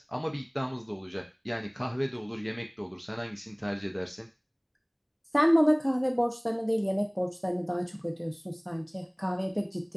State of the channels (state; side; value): identical; both; correlation 1.00